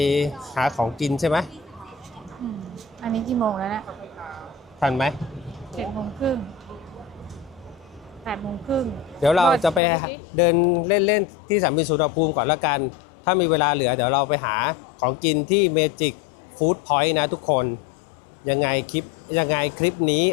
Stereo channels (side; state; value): right; drops out; at 9.8 s